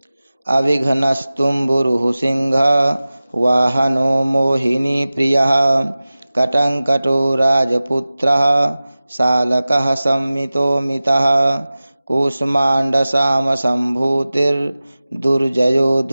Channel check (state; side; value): inverted; both; correlation -0.97